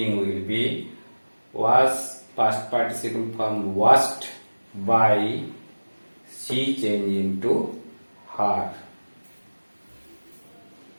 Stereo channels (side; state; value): both; inverted; correlation -1.00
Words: will be, was past participle form washed, by, she change into her.